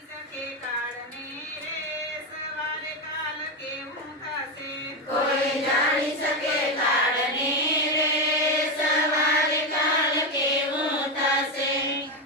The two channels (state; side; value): normal; both; correlation 0.11